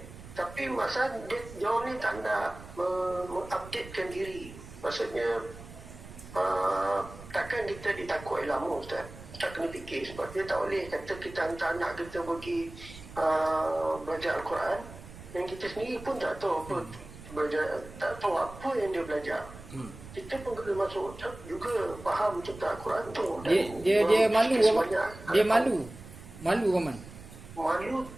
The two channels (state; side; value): noise; right; rumble, 16 dB below the sound